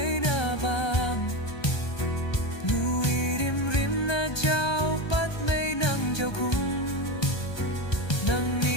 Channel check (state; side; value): late; right; 1.3 ms